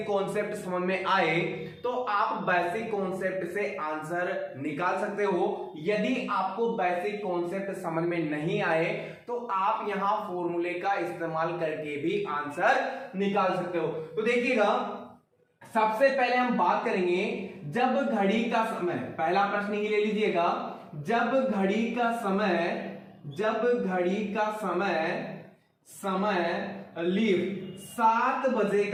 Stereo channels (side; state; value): both; identical; correlation 1.00